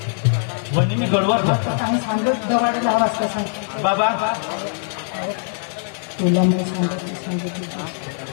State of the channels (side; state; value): right; silent; digital silence